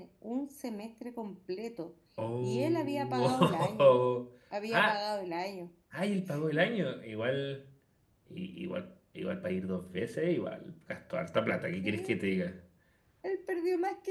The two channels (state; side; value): identical; both; correlation 1.00